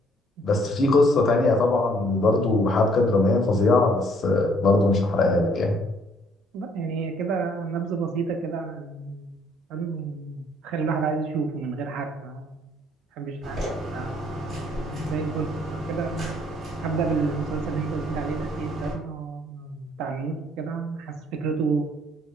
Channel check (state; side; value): normal; both; correlation 0.64